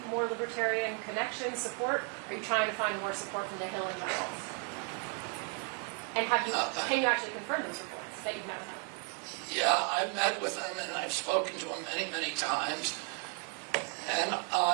more libertarian connection, support? Are you trying to find more support from the Hill and general? And can you actually confirm those reports that you've met with him? Yeah, I've met with him, and I've spoken to him many, many times. And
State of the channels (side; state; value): left; quieter; 38.7 dB